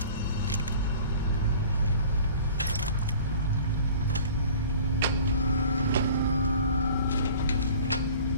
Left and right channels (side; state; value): both; inverted; correlation -0.45